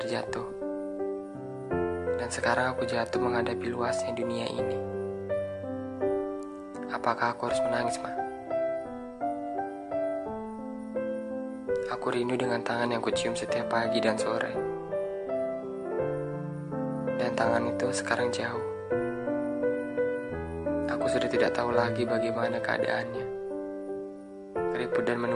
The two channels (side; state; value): both; identical; correlation 1.00